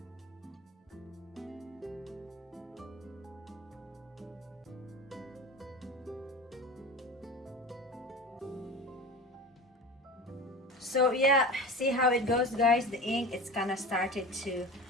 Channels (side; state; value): both; normal; correlation 0.32